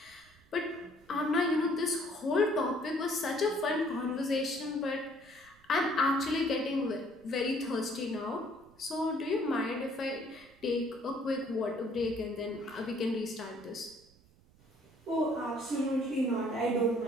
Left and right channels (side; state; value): right; noise; rumble, 28 dB below the sound